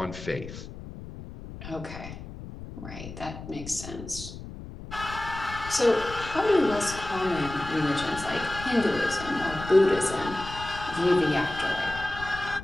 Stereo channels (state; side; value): noise; left; rumble, 12 dB below the sound